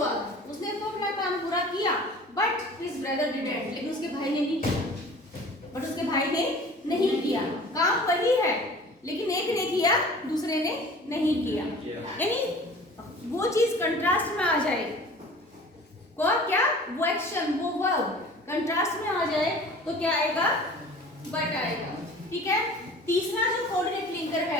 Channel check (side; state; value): both; normal; correlation 0.44